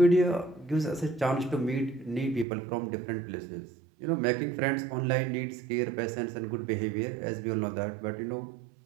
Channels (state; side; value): drops out; left; at 2.5 s